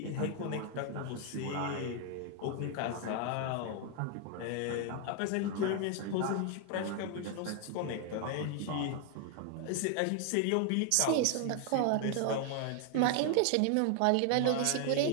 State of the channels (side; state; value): both; different; correlation 0.00